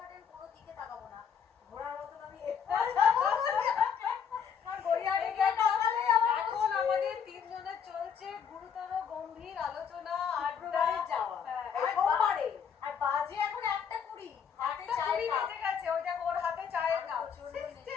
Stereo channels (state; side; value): quieter; right; 7.2 dB